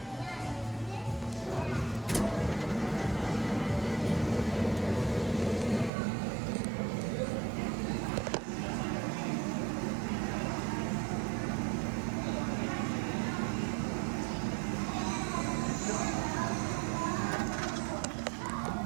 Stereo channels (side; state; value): left; drops out; at 5.9 s